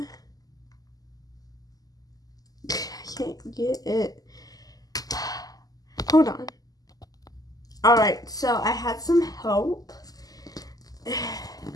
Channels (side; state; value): right; late; 0.18 ms